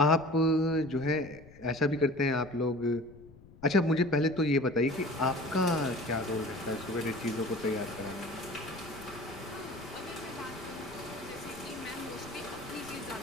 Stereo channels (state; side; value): noise; left; rumble, 22 dB below the sound